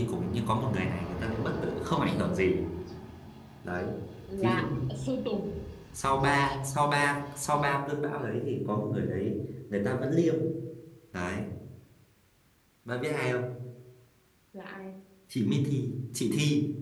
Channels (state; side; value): identical; both; correlation 1.00